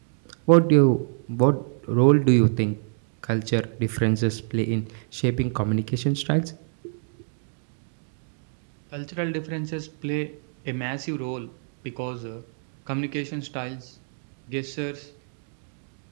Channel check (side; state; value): left; silent; digital silence